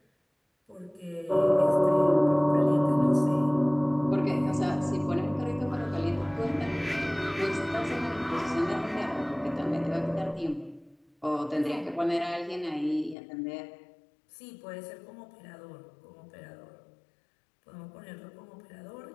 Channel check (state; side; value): drops out; right; at 13.2 s